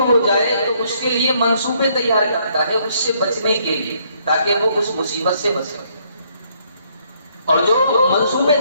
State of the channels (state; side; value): inverted; both; correlation -0.69